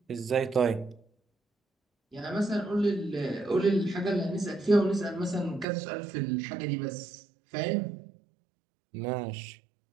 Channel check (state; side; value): drops out; left; at 5.7 s